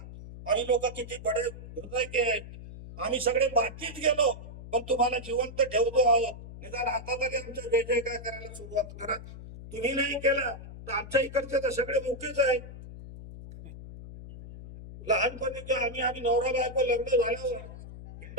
आम्ही लोक किती बडे हृदय के आम्ही सगळे मातीत गेलो पण तुम्हाला जिवंत ठेवतो आहोत. निदान आता तरी आमच्या जय जय काय करायला सुरुवात करा. तुम्ही नाही केला तर आमच्या इकडचे तर सगळे मुकेच आहेत. लहानपणी आम्ही नवरा बायको लग्न झाल्यावर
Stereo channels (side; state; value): left; noise; hum, 13 dB below the sound